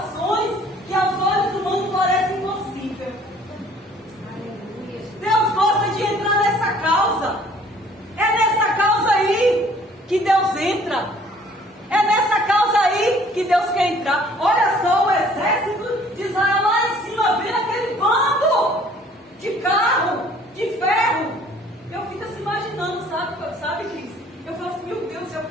que aos olhos humanos parecem impossíveis. Deus gosta de entrar nessa causa. É nessa causa aí que Deus entra. É nessa causa aí que Deus quer entrar. Olha só o exército de Israel lá em cima, vendo aquele bando de carro, de ferro. Eu fico assim imaginando, sabe, Cris? Eu falo assim, meu Deus, eu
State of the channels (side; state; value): both; normal; correlation 0.56